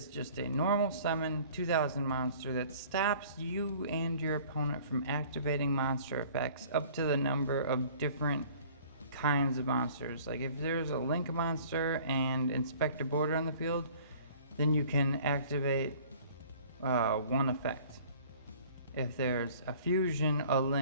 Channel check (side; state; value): both; inverted; correlation -0.51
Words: just a normal summon 2000 monster that stops you and your opponent from activating monster effects up to the number of different kinds of monsters. Like if there's a Link monster and Inspector Border on the field, then you can activate one effect. If there's a Fusion, a